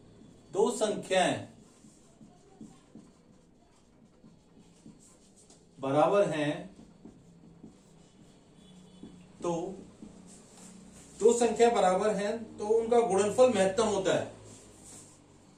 दो संख्याएं बराबर हैं तो दो संख्या बराबर हैं तो उनका गुणनफल महत्तम होता है।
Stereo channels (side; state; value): both; identical; correlation 1.00